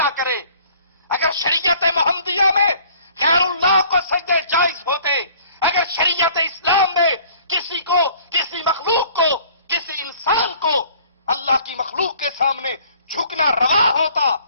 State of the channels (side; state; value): both; inverted; correlation -0.54